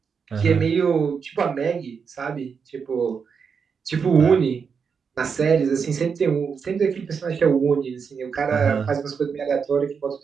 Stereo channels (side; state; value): left; quieter; 6.1 dB